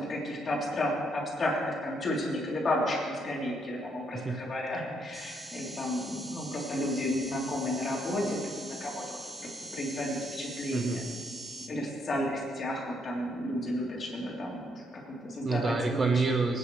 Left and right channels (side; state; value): both; normal; correlation 0.74